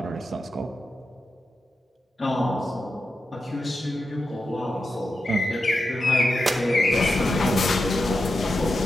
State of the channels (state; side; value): normal; both; correlation 0.89